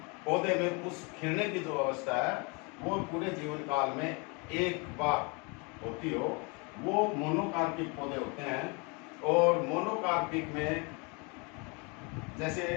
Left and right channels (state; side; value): quieter; right; 31.1 dB